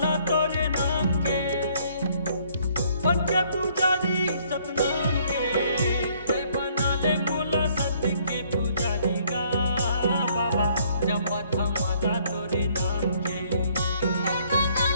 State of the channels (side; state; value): both; inverted; correlation -0.64